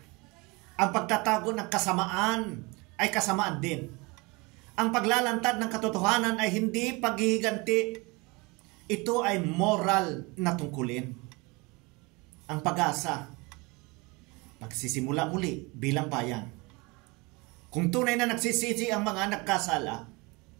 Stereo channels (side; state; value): left; quieter; 26.2 dB